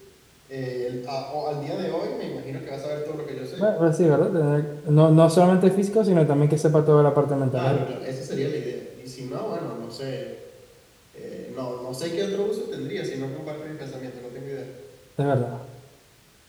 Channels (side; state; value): both; identical; correlation 1.00